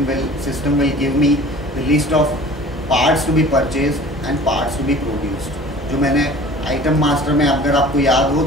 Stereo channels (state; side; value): normal; both; correlation 0.44